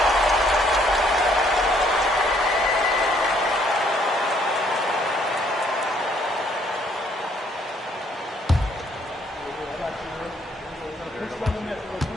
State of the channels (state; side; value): normal; both; correlation 0.66